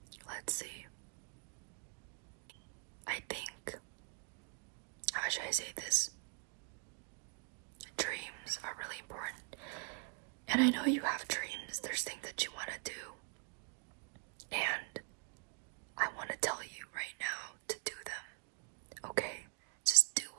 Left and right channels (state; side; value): quieter; left; 36.5 dB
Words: Let's see. I think, how should I say this? Dreams are really important. And I know you have dreams. There's things that you want to do. And I want to tell you right now to do them. Okay? Just do